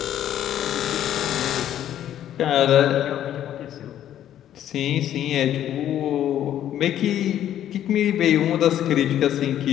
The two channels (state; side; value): quieter; right; 11.2 dB